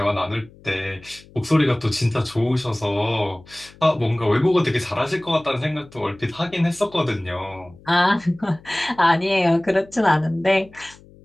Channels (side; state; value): left; noise; hum, 24 dB below the sound